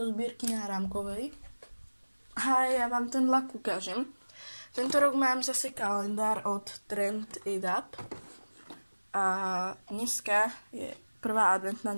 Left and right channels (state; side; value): inverted; both; correlation -1.00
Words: zbierky náramkovej. A ja vám ten lak ukážem. Tento rok mám zase kalendár od Trend It Up a dneska je prvá adventná